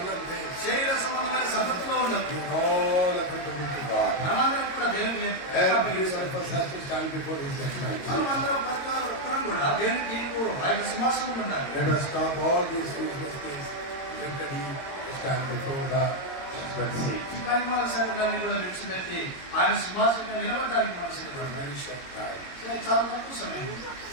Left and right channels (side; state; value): right; late; 22 ms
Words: things. శరీర సంబంధమైన సంగతిలో ఉండదు. All applicable to God. మనమందరం కూడా దేవుని Every one of us has to stand before His judgment. మనమందరం ప్రతి ఒక్కరం కూడా దేవుని తీర్పు ఆయన సింహాసనం ఉండాలి. Let us stop all these useless things. Let He stand before the judgment seat. ఈ పరిమాణ సంగతులన్నీ కూడా విడిచిపెట్టి ఆయన సింహాసనంలో నిలబడడానికి మనం సిద్ధపడాలి. Very short time. చాలా తక్కువ సమయం.